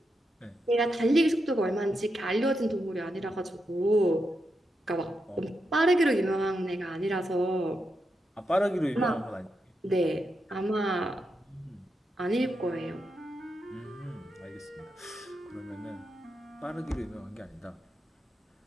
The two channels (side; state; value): both; normal; correlation 0.85